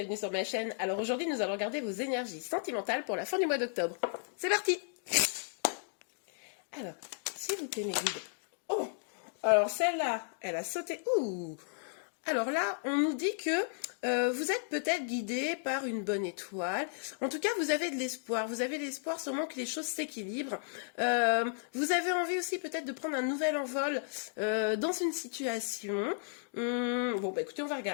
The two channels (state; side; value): silent; right; digital silence